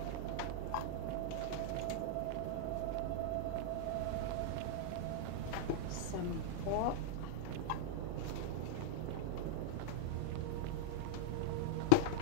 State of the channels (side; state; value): both; different; correlation -0.01